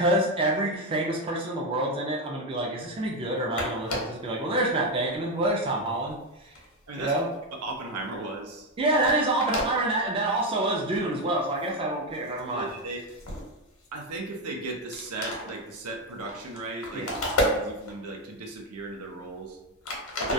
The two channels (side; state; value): both; normal; correlation 0.08